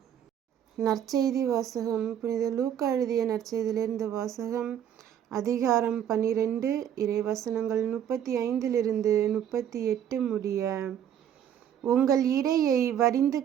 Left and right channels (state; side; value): quieter; left; 9.7 dB